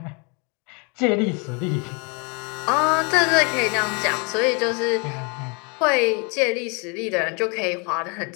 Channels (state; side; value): quieter; right; 33.1 dB